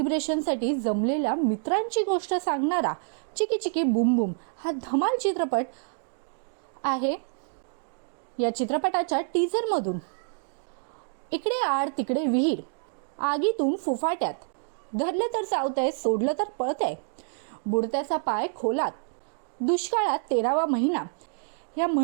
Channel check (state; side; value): silent; left; digital silence